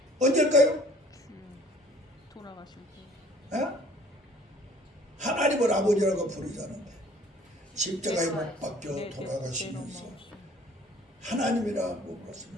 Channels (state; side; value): normal; both; correlation 0.53